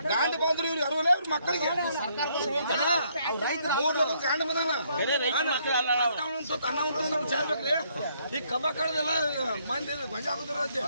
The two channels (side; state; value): both; inverted; correlation -0.69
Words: ಗಾಂಡ ಬಂದ್ರು ಇವ್ರು ಅರವಲ್ಲ ಇವ್ರ ಮಕ್ಕಳಿಗೆ 3 ಲೋಕದ ಗಾಂಡ ಬಂದಾನ. ಚಾರ್ಬೇಕ್ರಿ. ಈ ಕಬ್ಬ ಕಳೆದೆಲ್ಲ ಮಂದಿ ಗೊಂಜ ಆಗುದ್ರ